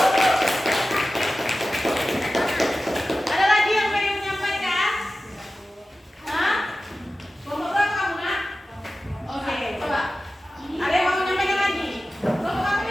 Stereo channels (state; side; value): normal; both; correlation 0.95